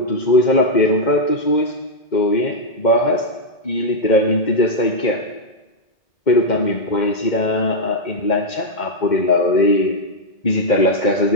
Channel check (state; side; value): late; right; 2.1 ms